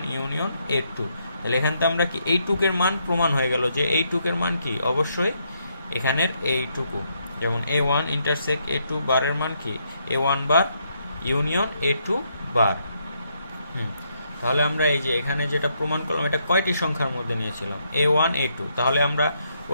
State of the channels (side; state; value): both; inverted; correlation -0.76